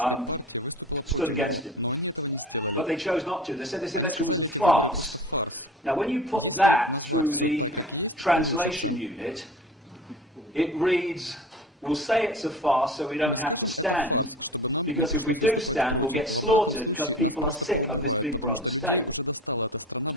stood against him. But they chose not to. They said this election was a farce. Now, when you put that through the translation unit, it reads, we'll say it's a farce so we don't have to stand, because if we do stand, we'll get slaughtered because people are sick of this Big Brother state.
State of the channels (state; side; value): normal; both; correlation 0.37